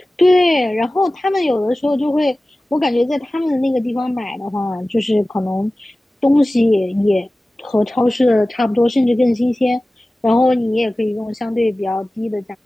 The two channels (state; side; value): normal; both; correlation 0.97